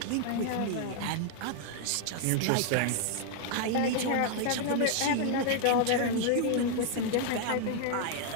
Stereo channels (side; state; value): both; different; correlation 0.00